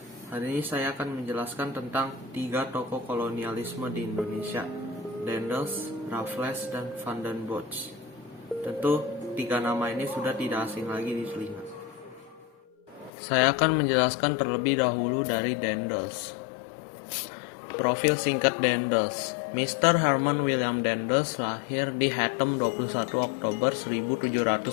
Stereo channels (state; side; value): drops out; right; at 13.1 s